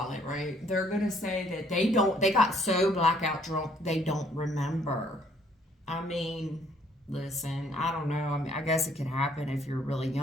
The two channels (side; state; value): both; normal; correlation 0.63